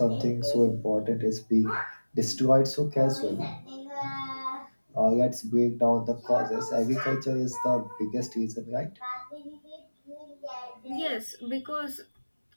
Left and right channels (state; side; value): inverted; both; correlation -1.00